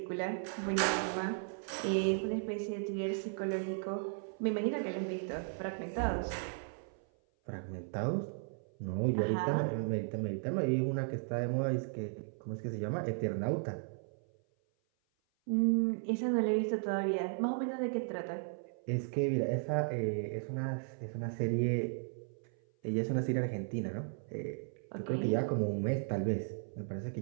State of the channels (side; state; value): left; silent; 54 dB below the other